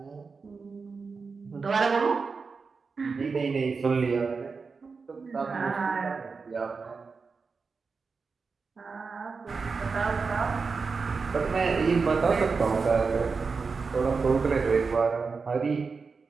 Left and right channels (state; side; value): quieter; left; 4.8 dB